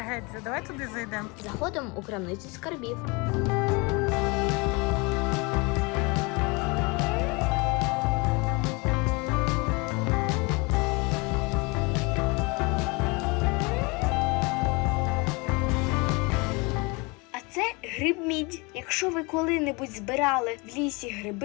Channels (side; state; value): right; quieter; 28.0 dB